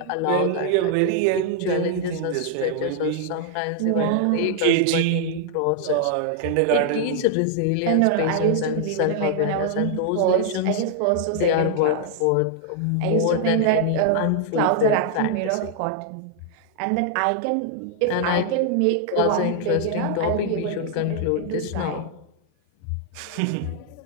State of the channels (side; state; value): both; different; correlation 0.00